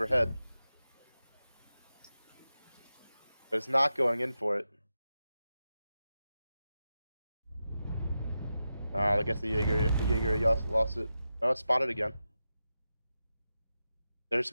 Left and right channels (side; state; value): both; inverted; correlation -0.90